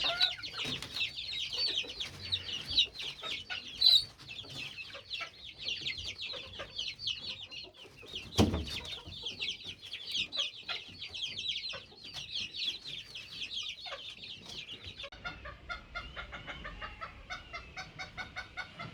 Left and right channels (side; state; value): both; identical; correlation 1.00